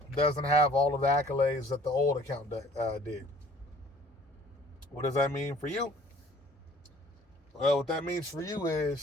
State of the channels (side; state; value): both; normal; correlation 0.53